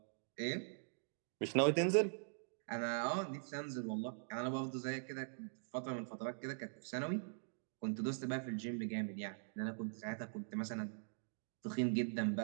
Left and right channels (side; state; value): left; silent; digital silence